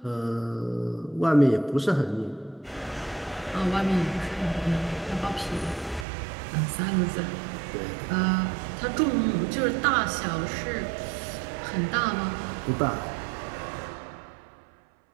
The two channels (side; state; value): left; drops out; at 6.1 s